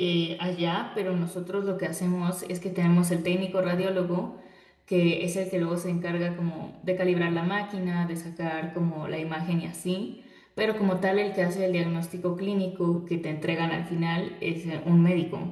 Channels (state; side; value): identical; both; correlation 1.00